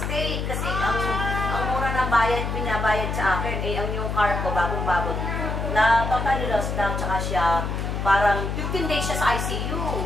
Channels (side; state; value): left; noise; hum, 2 dB below the sound